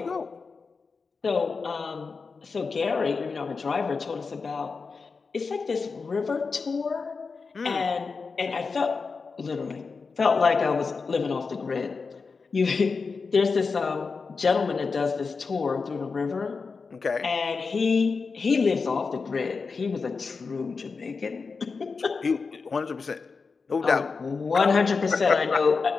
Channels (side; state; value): right; quieter; 4.7 dB